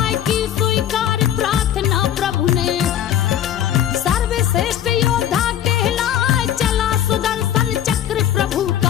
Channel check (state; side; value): quieter; right; 10.7 dB